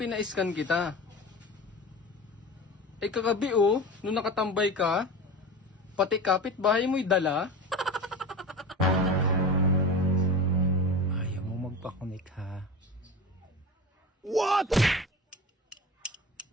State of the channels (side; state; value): both; normal; correlation 0.31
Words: kita. Ay kagabi oh, nung nakatambay ka, pati kapitbahay mo'y dala. Ayaw mo magpakonect ha. What?